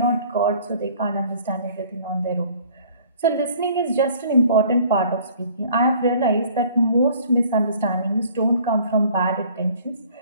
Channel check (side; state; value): both; inverted; correlation -0.53